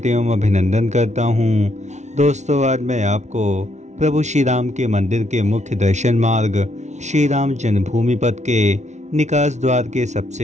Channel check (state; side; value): late; left; 0.33 ms